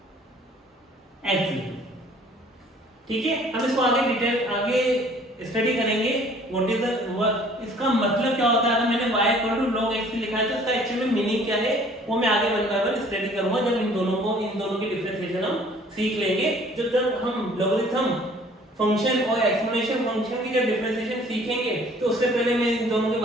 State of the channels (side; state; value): both; normal; correlation 0.54